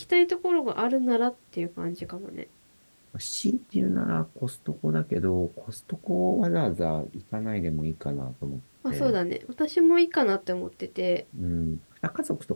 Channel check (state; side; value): inverted; both; correlation -1.00